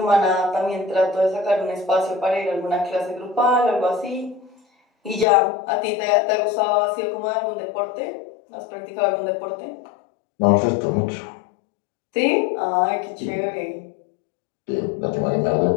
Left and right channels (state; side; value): drops out; right; at 5.2 s